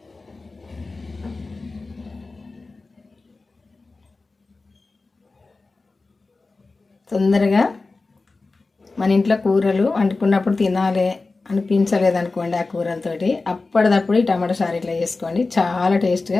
తొందరగా మన ఇంట్లో కూరలు వండుకున్నప్పుడు తినాలి అనిపించలేదనుకోండి ఆ కూరలతోటి, అప్పటిదప్పుడు ఈ టమాటా చారు ఇట్లా చేసుకోండి. చాలా టేస్ట్గా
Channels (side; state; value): right; quieter; 3.7 dB